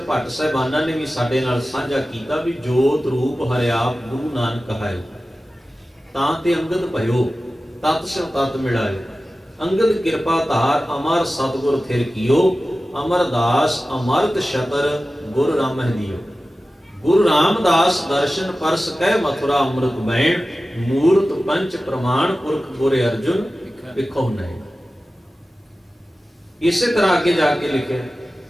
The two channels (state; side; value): normal; both; correlation 0.95